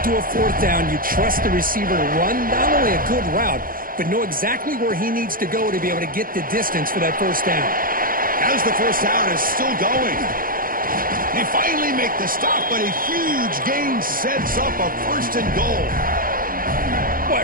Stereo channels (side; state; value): left; late; 0.41 ms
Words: to a fourth down, you trust the receiver to run not only a good route, but know exactly where he needs to go to be able to get the distance for that first down. As the first down is still going. They finally make the stop, but a huge gain sets up a first and goal.